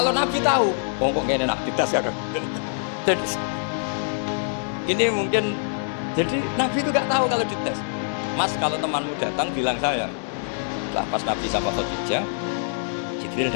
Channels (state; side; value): silent; right; digital silence